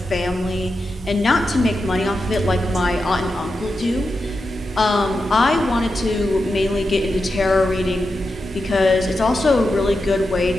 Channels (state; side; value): normal; both; correlation 0.89